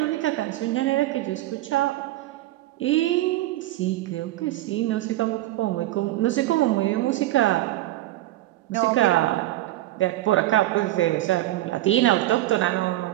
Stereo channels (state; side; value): quieter; left; 16.0 dB